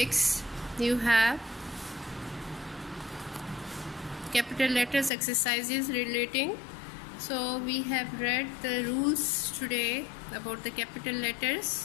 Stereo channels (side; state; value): right; drops out; at 5.1 s